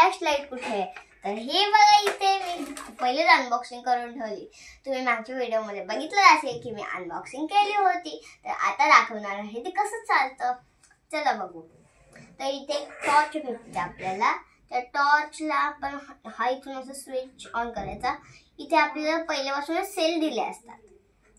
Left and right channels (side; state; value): both; identical; correlation 1.00